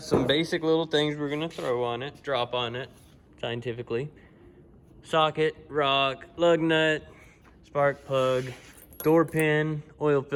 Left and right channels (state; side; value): identical; both; correlation 1.00